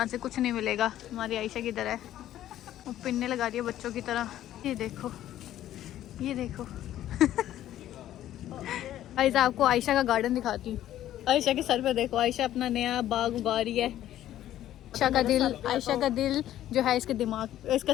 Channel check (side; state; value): right; quieter; 12.7 dB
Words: से कुछ नहीं मिलेगा। हमारी आयशा किधर है? वो पिन्ने लगा रही है बच्चों की तरह। ये देखो, ये देखो। आयशा, आपको आयशा का गार्डन दिखाती हूँ। आयशा के सर पे देखो। आयशा अपना नया बाग उगा रही है। आयशा का दिल जो है इसके दिमाग,